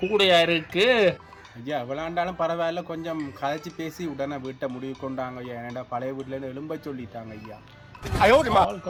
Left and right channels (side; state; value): both; identical; correlation 1.00